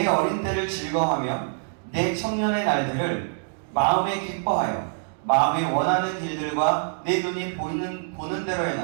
어린 때를 즐거워하며 내 청년의 날들을 마음에 기뻐하여 마음이 원하는 길들과 내 눈이 보는 대로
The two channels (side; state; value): left; silent; digital silence